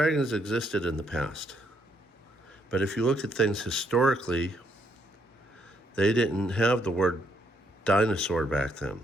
existed in the past. But if you look at things historically, they didn't have the word dinosaur back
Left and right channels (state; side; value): normal; both; correlation 0.73